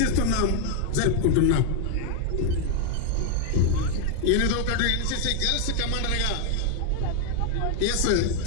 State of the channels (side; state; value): both; different; correlation 0.00